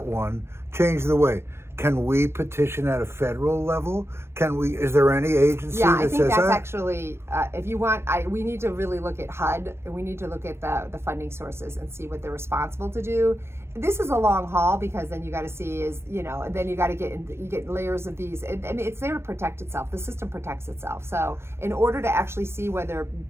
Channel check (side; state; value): left; late; 0.12 ms